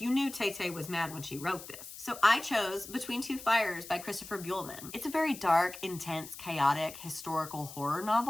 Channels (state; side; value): noise; left; hiss, 14 dB below the sound